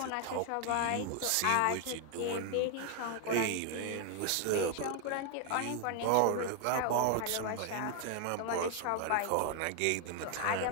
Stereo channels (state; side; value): different; both; correlation 0.00